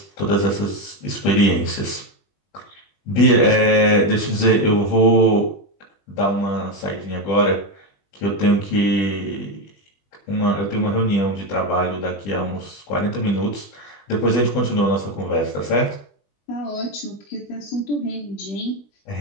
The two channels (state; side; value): late; right; 20 ms